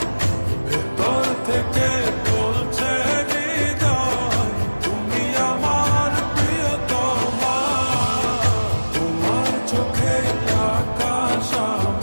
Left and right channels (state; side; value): inverted; both; correlation -1.00